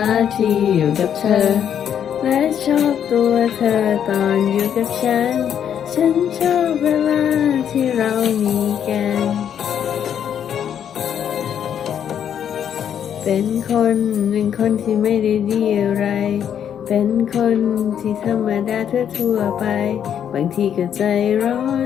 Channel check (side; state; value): right; quieter; 9.0 dB